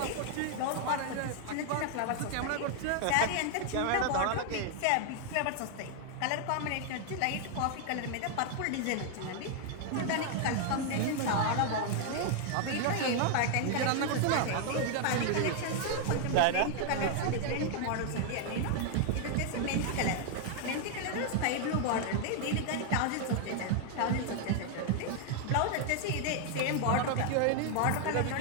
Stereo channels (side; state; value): both; different; correlation 0.00